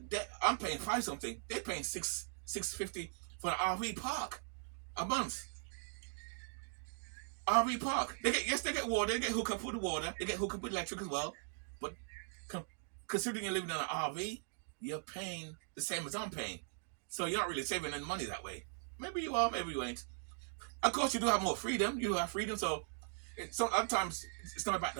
I'm paying 5 something. They're paying $650 for an RV park a month. RV park. They get water. They get hooked up with the water. They get hooked up with electric as well. But considering you're living in an RV, you're paying the same as I'm paying. So you're not really saving any money that way. Maybe you are, maybe you ain't. Of course, you do have more freedom. You do have freedom. So sometimes it's not about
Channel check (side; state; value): left; silent; digital silence